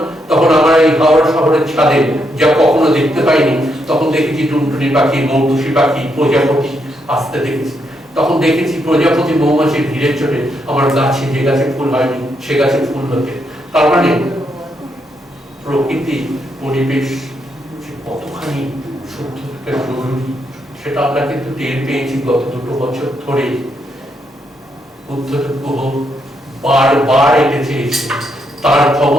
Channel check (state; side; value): normal; both; correlation 0.78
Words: তখন আমরা এই হাওড়া শহরের ছাদে যা কখনো দেখতে পাইনি, তখন দেখেছি টুনটুনি পাখি, মৌটুসি পাখি, প্রজাপতি আসতে দেখেছি। তখন দেখেছি প্রজাপতি মৌমাছি ভিড়ে চলে আমার গাছে, যে গাছে ফুল হয়নি সে গাছে ফুল হতে। তার মানে প্রকৃতি পরিবেশ কতখানি সত্যি জরুরি সেটা আমরা কিন্তু টের পেয়েছি গত 2 বছর ধরে। বুদ্ধদেব গুহ বারবার এটা চেয়েছে, তার